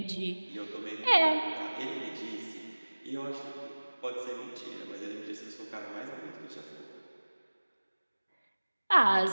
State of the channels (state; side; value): inverted; both; correlation -1.00